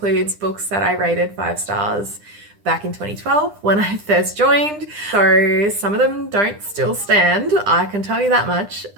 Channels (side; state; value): left; late; 9.9 ms